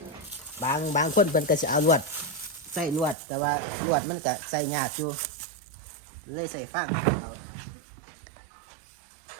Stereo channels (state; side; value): drops out; left; at 3.2 s